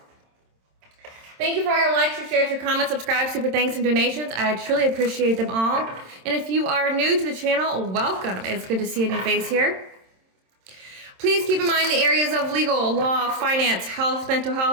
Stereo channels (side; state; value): left; late; 27 ms